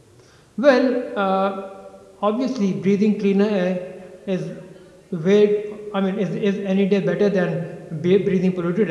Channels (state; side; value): identical; both; correlation 1.00